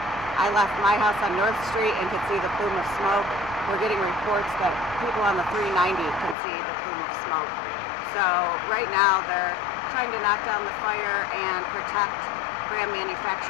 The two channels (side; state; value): right; drops out; at 6.4 s